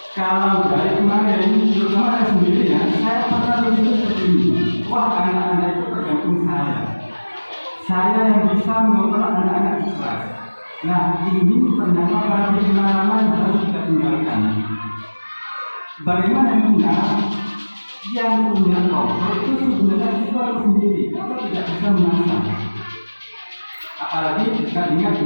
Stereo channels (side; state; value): both; inverted; correlation -1.00